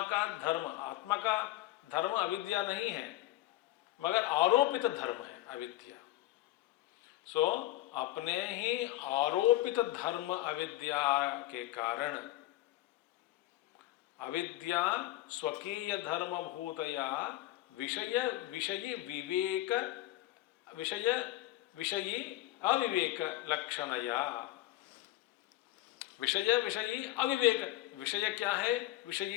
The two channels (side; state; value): right; quieter; 15.8 dB